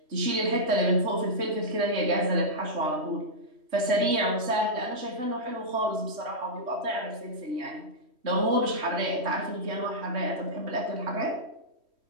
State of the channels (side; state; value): left; late; 3.1 ms